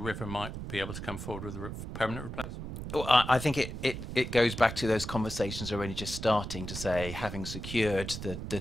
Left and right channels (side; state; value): right; noise; rumble, 7 dB below the sound